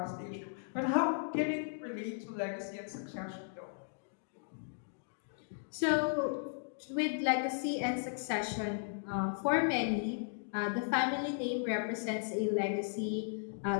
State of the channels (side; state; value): right; silent; digital silence